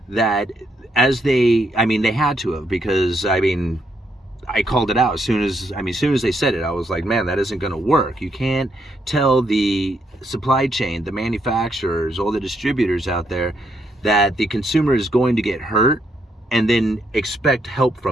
that they had to have, because, I called it out as soon as they said it. I was like, man, that isn't going to work. You can't tell the supply chain, the manufacturers, all the distributors out there that the consumer is going to get hurt and then expect help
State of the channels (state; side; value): normal; both; correlation 0.76